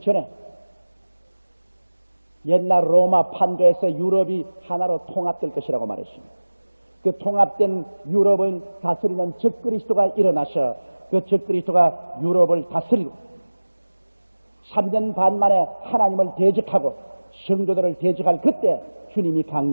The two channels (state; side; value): inverted; both; correlation -1.00